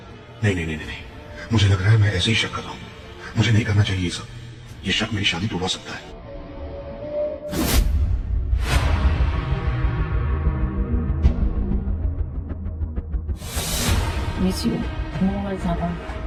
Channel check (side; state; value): both; identical; correlation 1.00